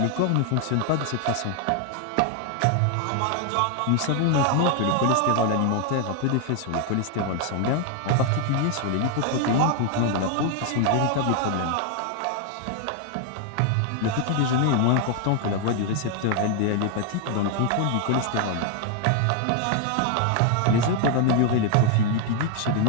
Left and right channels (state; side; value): different; both; correlation 0.01